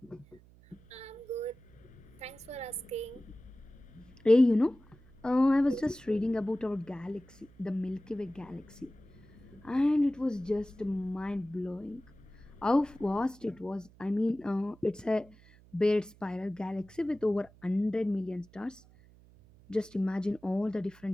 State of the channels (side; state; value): right; noise; hum, 25 dB below the sound